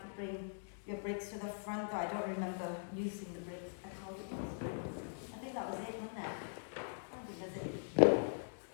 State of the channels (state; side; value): silent; right; digital silence